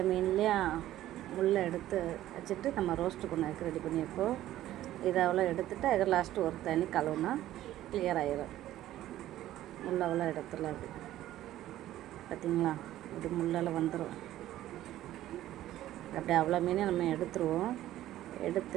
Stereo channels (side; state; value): left; quieter; 13.8 dB